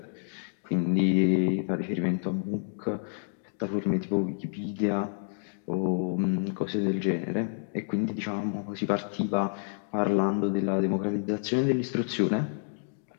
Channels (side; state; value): right; silent; digital silence